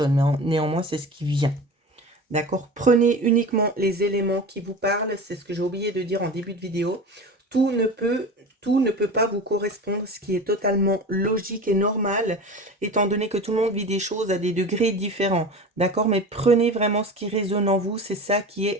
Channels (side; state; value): both; normal; correlation 0.33